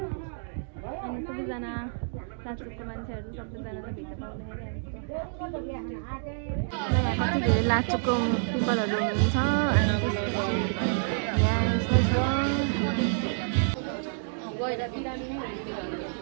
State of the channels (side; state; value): left; silent; digital silence